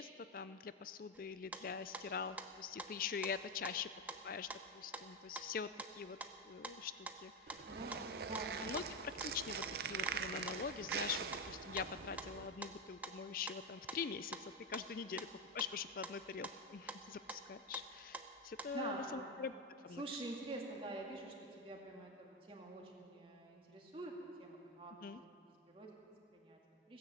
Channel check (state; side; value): normal; both; correlation 0.11